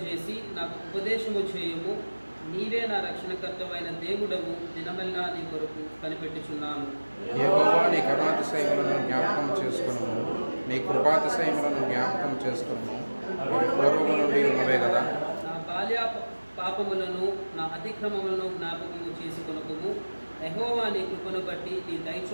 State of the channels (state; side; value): inverted; both; correlation -1.00